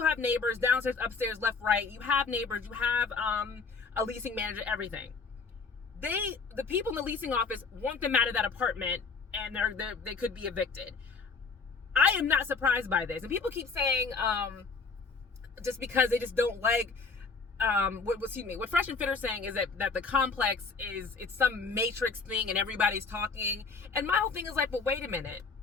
have neighbors downstairs, upstairs, left, right. You have neighbors. You have a leasing manager, everything. The people in the leasing office want them out of that apartment, and they could be evicted. I am not surprised by this. And people keep saying, just because they just don't like, what Fresh and Fit are saying is that the complex it's some matrix thing and everybody's talking. And my whole thing is like, but wait a minute.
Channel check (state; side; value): quieter; right; 4.7 dB